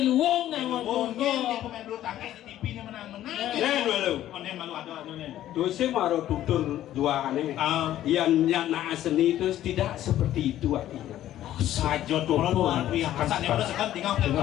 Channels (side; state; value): right; quieter; 12.8 dB